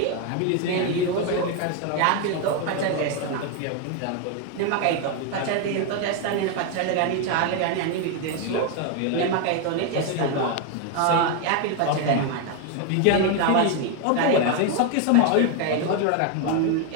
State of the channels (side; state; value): both; different; correlation 0.01